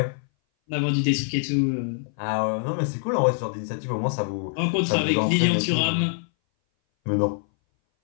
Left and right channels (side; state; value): right; silent; 60 dB below the other